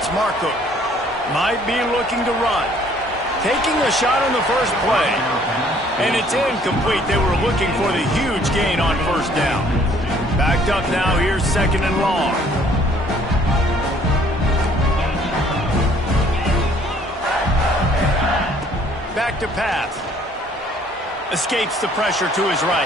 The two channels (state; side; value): normal; both; correlation 0.60